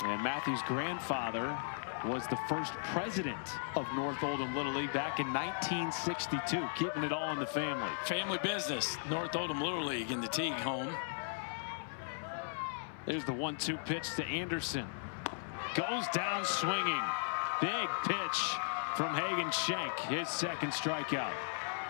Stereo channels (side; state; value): right; silent; 53 dB below the other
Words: And Matthew's grandfather was the first president of North Oldham Little League back in 1962, keeping it all in the family. Family business, North Oldham Little League in the Teague home. There's the 1-2 pitch to Anderson. Goes down swinging. Big pitch from Hagen Schenk, his second strikeout.